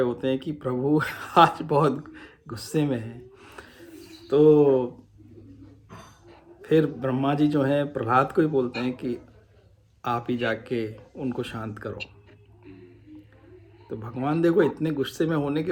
होते हैं कि प्रभु आज बहुत गुस्से में हैं। तो फिर ब्रह्मा जी जो हैं प्रहलाद को ही बोलते हैं कि आप ही जाके उनको शांत करो। तो भगवान देखो इतने गुस्से में होने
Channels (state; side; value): identical; both; correlation 1.00